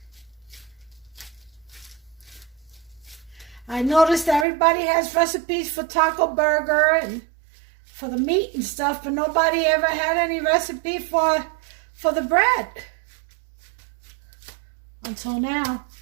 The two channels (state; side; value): drops out; left; at 4.5 s